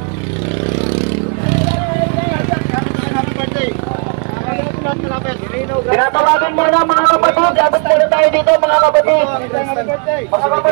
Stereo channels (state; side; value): quieter; left; 39.1 dB